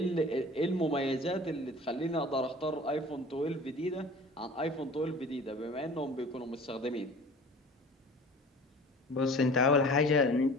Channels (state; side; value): normal; both; correlation 0.43